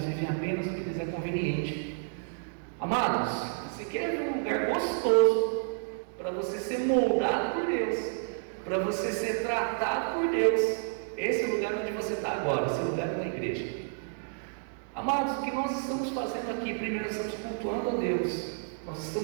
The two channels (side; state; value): left; silent; digital silence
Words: vivem apenas o que lhes é conveniente. Amados, você quer ver um lugar gostoso para você ser moldado por Deus, para você ser tratado por Deus? Esse é o lugar onde você está agora, esse lugar é na igreja. Amados, o que nós estamos fazendo aqui? Primeiro, nós estamos cultuando a Deus, nós